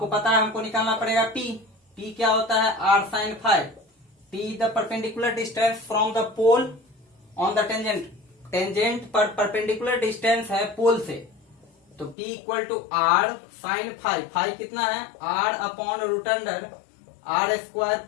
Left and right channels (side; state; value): right; drops out; at 12.2 s